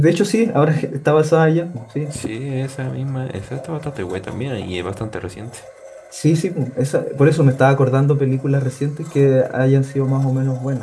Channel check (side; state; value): both; identical; correlation 1.00